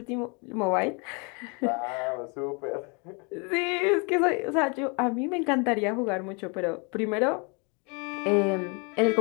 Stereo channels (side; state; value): right; quieter; 33.1 dB